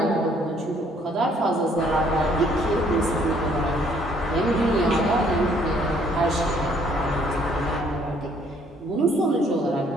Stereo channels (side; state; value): both; normal; correlation 0.63